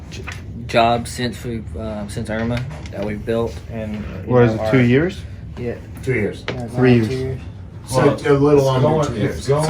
jobs since Irma that we've built. And What is it, 2 years? Yeah. 2 years. 3 years. So a little under 2 It's years. It's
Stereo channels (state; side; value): identical; both; correlation 1.00